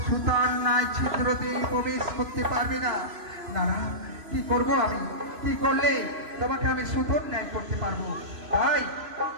সুতার নাই ছিদ্রতে প্রবেশ করতে পারবে না। না না, কি করবো আমি? কি করলে তোমাকে আমি সুতোর ন্যায় করতে পারবো? তাই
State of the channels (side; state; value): left; late; 3.0 ms